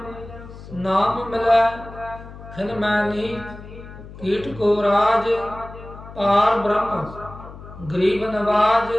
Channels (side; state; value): left; noise; hum, 15 dB below the sound